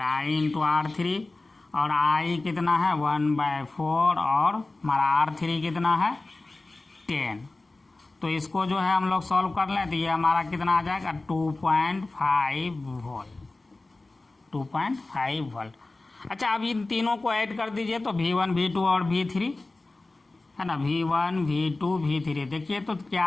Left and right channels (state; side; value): quieter; right; 3.1 dB